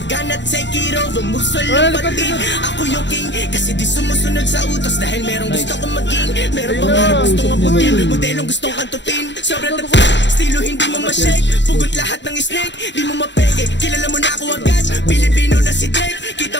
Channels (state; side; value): late; right; 0.52 ms